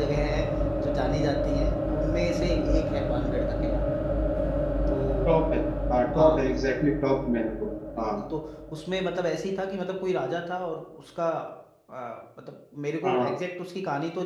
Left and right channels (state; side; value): identical; both; correlation 1.00